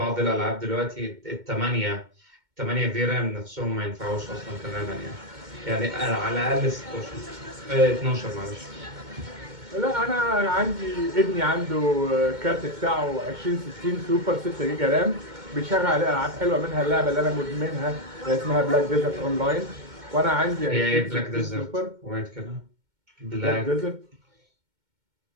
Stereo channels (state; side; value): late; left; 2.2 ms